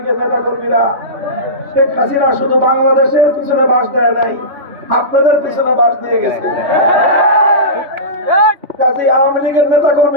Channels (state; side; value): late; left; 3.5 ms